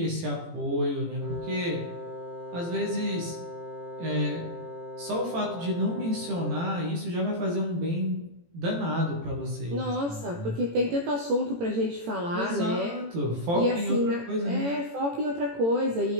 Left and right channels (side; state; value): left; late; 18 ms